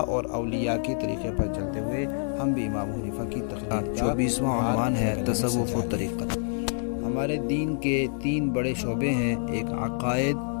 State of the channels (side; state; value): right; silent; 59 dB below the other